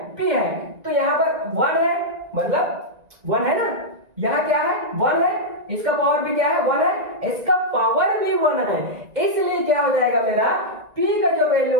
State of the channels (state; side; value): late; left; 1.9 ms